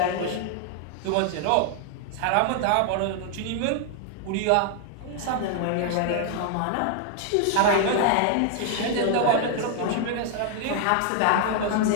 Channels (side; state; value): both; different; correlation 0.00